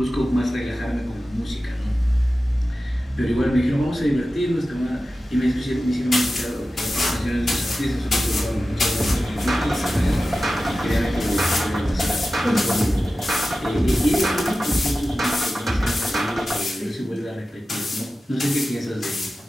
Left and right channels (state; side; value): normal; both; correlation 0.94